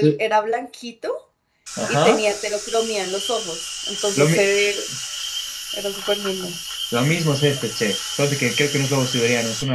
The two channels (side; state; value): both; identical; correlation 1.00